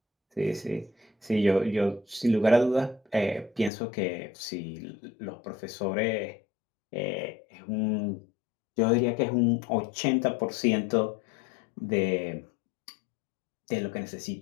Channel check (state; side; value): drops out; right; at 3.7 s